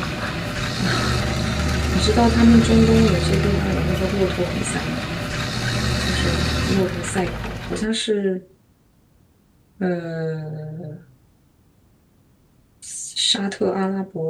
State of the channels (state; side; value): identical; both; correlation 1.00